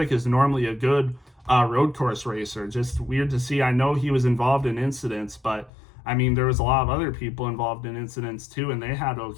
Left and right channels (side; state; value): right; drops out; at 5.7 s